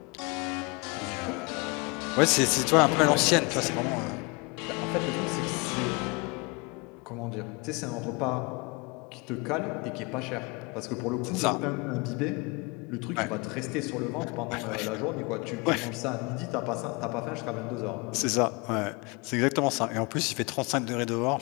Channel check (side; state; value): right; quieter; 28.5 dB